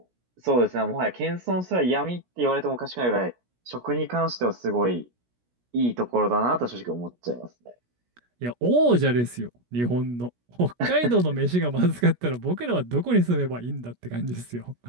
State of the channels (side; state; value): left; late; 17 ms